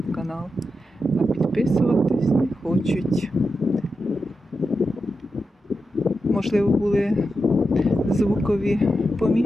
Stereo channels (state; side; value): normal; both; correlation 0.89